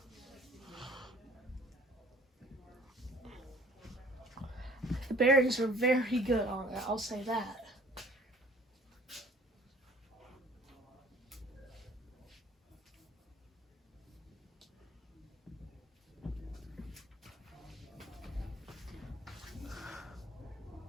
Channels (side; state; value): both; normal; correlation 0.53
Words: The bearings are very good on it, I'll say that.